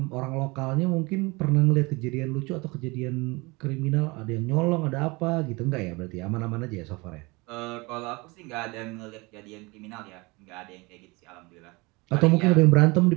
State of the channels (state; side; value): quieter; left; 25.2 dB